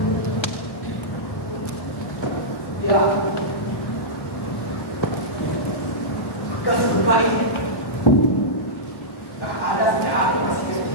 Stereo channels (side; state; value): right; late; 1.1 ms